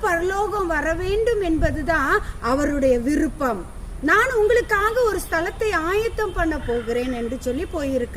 பரலோகம் வர வேண்டும் என்பதுதான் அவருடைய விருப்பம். நான் உங்களுக்காக ஒரு ஸ்தலத்தை ஆயத்தம் பண்ண போகிறேன் என்று சொல்லி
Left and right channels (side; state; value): both; identical; correlation 1.00